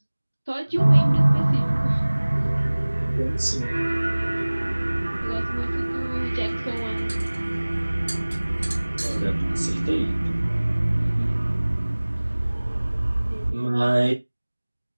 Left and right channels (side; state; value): both; inverted; correlation -1.00